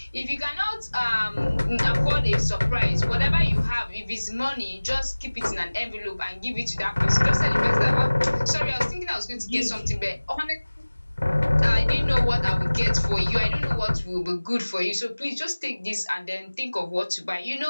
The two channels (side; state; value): both; inverted; correlation -1.00